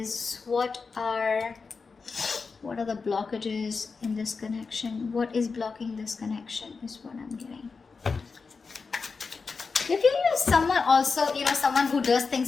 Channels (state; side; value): quieter; right; 4.7 dB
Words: what are the blockages in this connection. What is blocking this connection is what I'm getting. If you use someone also, someone who does